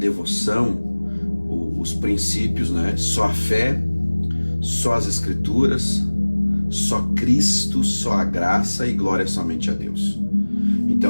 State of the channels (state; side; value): inverted; both; correlation -1.00